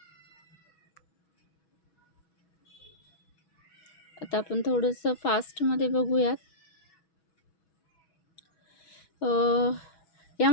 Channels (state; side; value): late; right; 6.2 ms